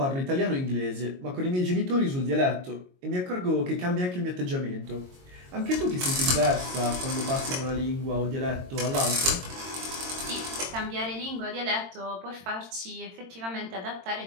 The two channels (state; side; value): late; left; 22 ms